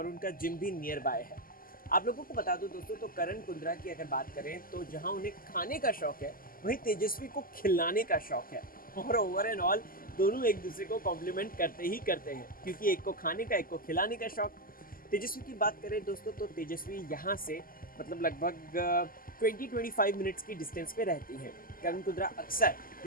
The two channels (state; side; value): late; right; 0.42 ms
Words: उनका जिम भी नियर बाय है। आप लोगों को बता दो दोस्तों, तो करण कुंद्रा की अगर बात करें तो जहां उन्हें खाने का शौक है वहीं तेजस्वी को खिलाने का शौक है, और ओवर एंड ऑल दोनों एक दूसरे को कॉम्प्लीमेंट करते ही करते हैं, क्योंकि एक को खाने का एक को खिलाने का शौक। तेजस्वी की बात करें दोस्तों तो तेजस्वी यहाँ से मतलब लगभग 20-25 मिनट्स की डिस्टेंस पे रहती हैं। करण कुंद्रा अक्सर